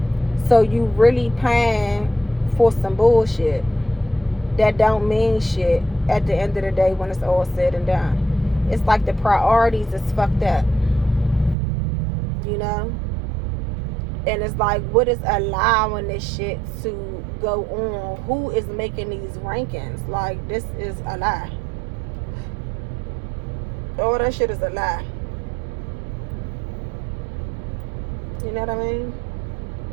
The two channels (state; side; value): drops out; left; at 11.6 s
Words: So you really paying for some bullshit that don't mean shit at the end of the day when it's all said and done. It's like the priorities is fucked up. You know? And it's like, what is allowing this shit to go on? Who is making these rankings? Like, this is a lie. All that shit is a lie. You know what I mean?